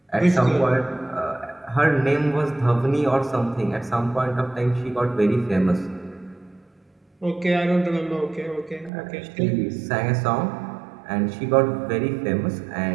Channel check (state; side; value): drops out; left; at 8.9 s